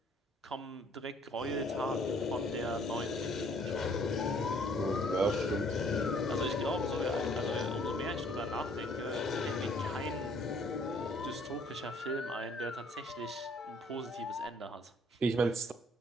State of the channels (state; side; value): normal; both; correlation 0.61